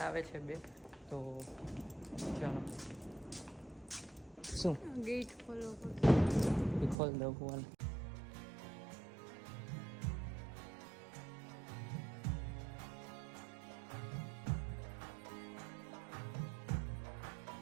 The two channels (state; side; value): drops out; left; at 7.0 s